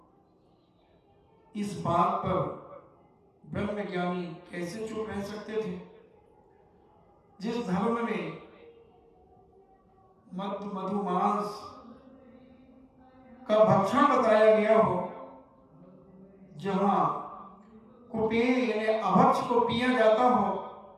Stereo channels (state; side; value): identical; both; correlation 1.00